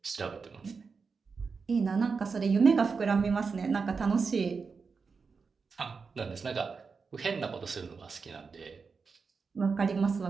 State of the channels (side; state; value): left; quieter; 5.0 dB